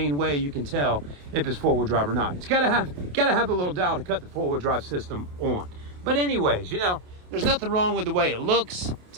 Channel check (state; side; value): late; left; 28 ms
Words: way you can tell if it's four-wheel drive or not. It's gotta have a little dial to cut the four-wheel drive system on. But anyways, there's nothing wrong with the way it looks.